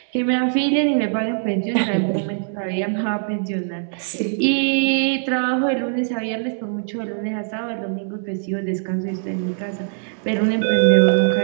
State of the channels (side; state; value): left; silent; digital silence